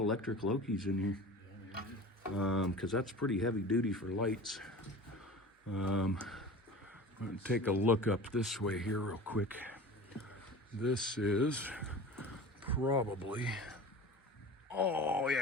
Loki's in here. Because that's pretty heavy duty for lights. I'm gonna take a look up this way here real quick. This is probably, oh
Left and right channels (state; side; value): normal; both; correlation 0.36